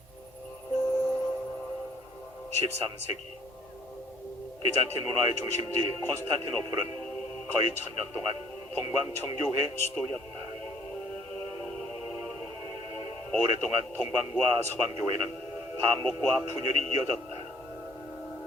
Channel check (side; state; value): both; normal; correlation 0.59